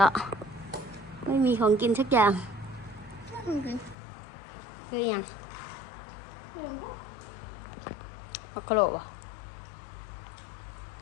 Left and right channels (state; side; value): drops out; right; at 4.0 s